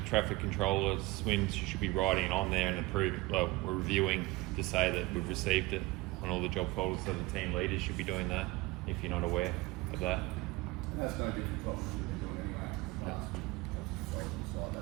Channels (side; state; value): left; quieter; 20.8 dB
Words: traffic controllers swims, you should be writing it on there and approving. Well, we're reviewing to say that we've received it on all the job folders. So the team leaders should be doing that if you're not aware of that. And that's no different from what we've been doing anyway. Last site,